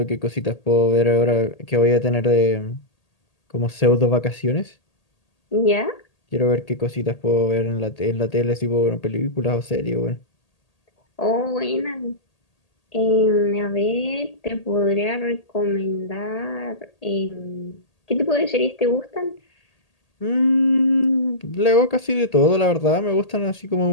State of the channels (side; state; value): right; late; 1.8 ms